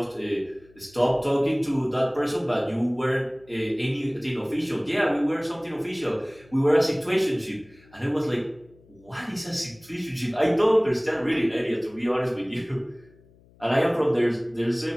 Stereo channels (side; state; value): left; noise; hum, 28 dB below the sound